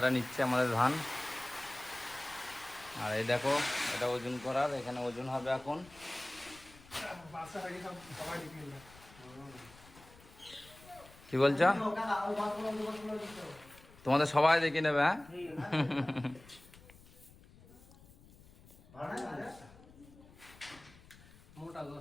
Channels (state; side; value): noise; left; rumble, 23 dB below the sound